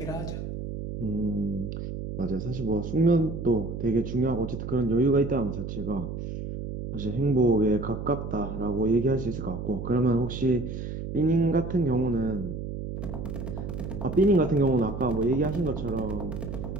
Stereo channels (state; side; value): noise; right; hum, 6 dB below the sound